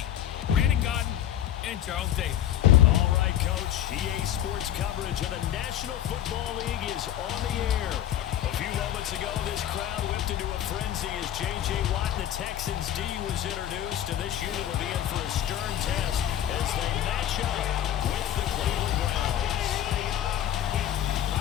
Brandon Godden and Charles Davis. All right, Coach. EA Sports coverage of the National Football League is on the air. A few moments ago, this crowd whipped into a frenzy as J.J. Watt and the Texans D was introduced, and this unit will be in for a stern test as they match up with the Cleveland Browns.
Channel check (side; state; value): right; quieter; 11.5 dB